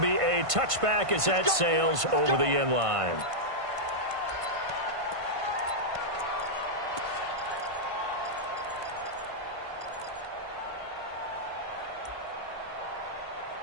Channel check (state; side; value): late; left; 1.5 ms